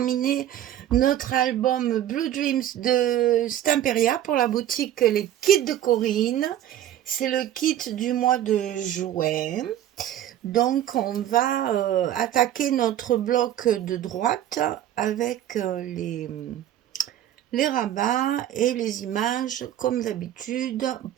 notre album Blue Dreams de Stamperia pour la boutique Les Kits de Corinne. C'est le kit du mois de juin. Donc, on va attaquer notre bloc de droite avec les rabats et les images comme d'habitude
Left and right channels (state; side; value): quieter; left; 11.8 dB